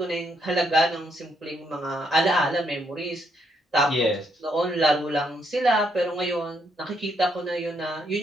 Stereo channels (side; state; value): both; normal; correlation 0.75